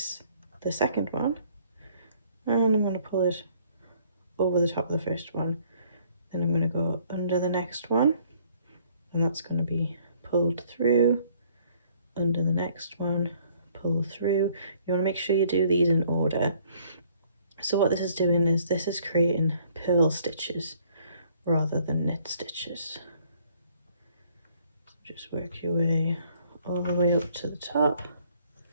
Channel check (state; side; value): inverted; both; correlation -0.62